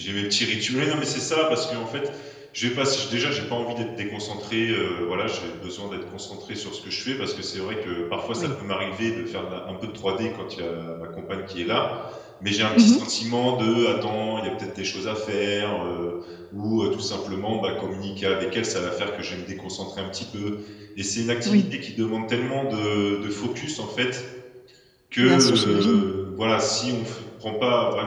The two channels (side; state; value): both; identical; correlation 1.00